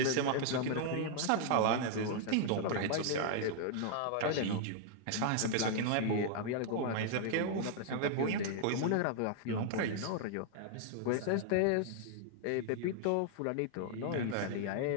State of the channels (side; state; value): both; different; correlation 0.00